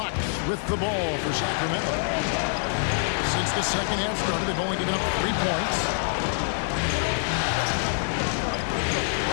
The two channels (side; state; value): right; silent; 61 dB below the other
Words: with the ball for Sacramento. Since the second half started, they've only given up 3 points.